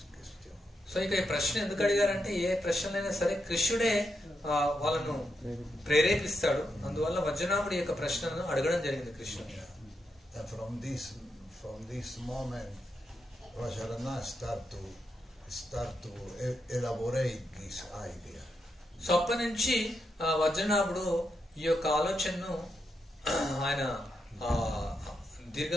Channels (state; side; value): normal; both; correlation 0.83